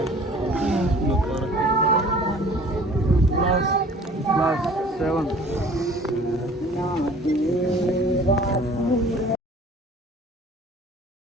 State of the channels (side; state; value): both; normal; correlation 0.49